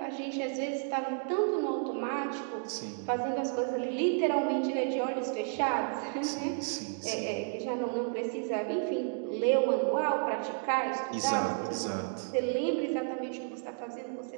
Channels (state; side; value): silent; left; 56 dB below the other